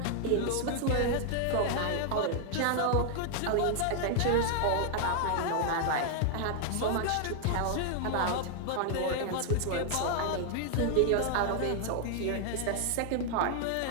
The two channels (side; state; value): both; different; correlation 0.00